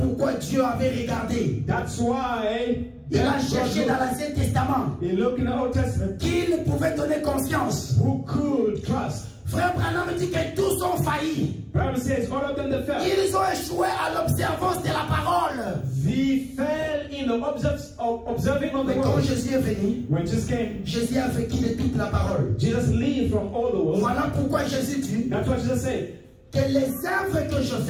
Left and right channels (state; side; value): identical; both; correlation 1.00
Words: Dieu avait regardé. That's why Il a cherché dans l'Ancien Testament he looked in the Old Testament qui ne pouvait donner confiance. who could trust. Frère Branham dit que tous ont failli. Bible says all of them that fell. Ils ont échoué à l'observance de la parole. They fell in the observing of the Mais quand word. Jésus est venu, When Jesus came, Jésus a vécu de toute la parole. Jesus lived from all the world. Voilà pourquoi Jésus dit That's what Jesus said. que les œuvres que je